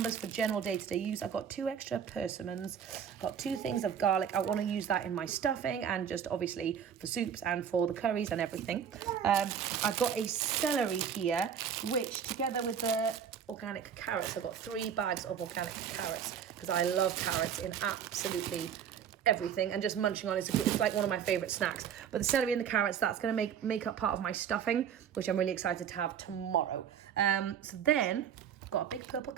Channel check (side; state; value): left; quieter; 8.2 dB